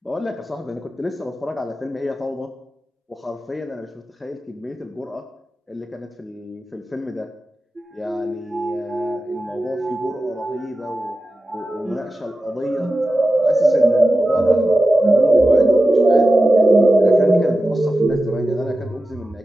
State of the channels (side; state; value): both; normal; correlation 0.93